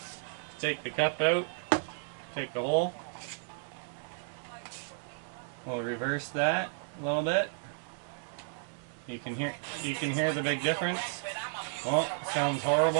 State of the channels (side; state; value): left; silent; digital silence